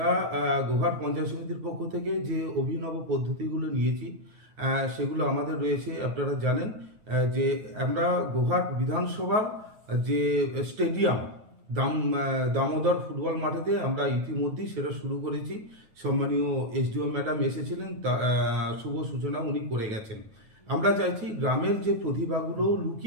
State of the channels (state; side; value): late; left; 9.2 ms